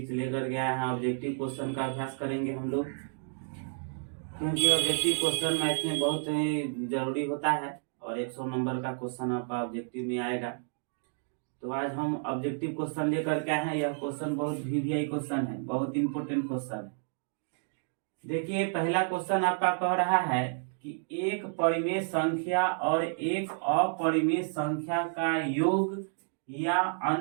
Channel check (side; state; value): left; silent; digital silence